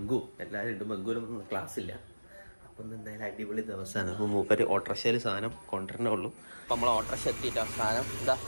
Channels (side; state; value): both; inverted; correlation -1.00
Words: എല്ലാവരും ഉണ്ട്. ബംഗുവിനൊന്നും ക്ലാസ്സില്ല. അപ്പം എന്തായാലും അടിപൊളി ദിവസമാണ്. അപ്പോൾ മൂപ്പര് ഓട്ടോറിക്ഷയിൽ സാധനം കൊണ്ടുവരണേ ഉള്ളൂ. അപ്പം നമ്മൾ ഓട്ടോറിക്ഷ എത്തിയിട്ടോ. സാധനം എന്താ